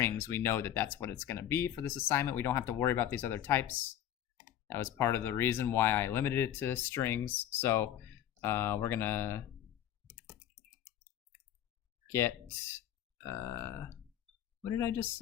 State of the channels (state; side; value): quieter; right; 11.3 dB